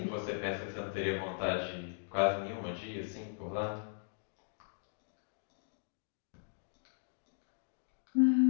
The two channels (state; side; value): silent; right; digital silence